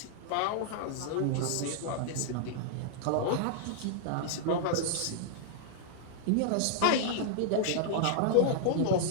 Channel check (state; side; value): different; both; correlation -0.01